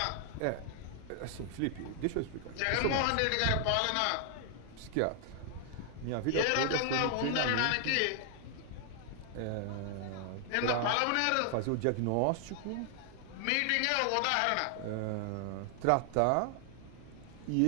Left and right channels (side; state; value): both; different; correlation 0.00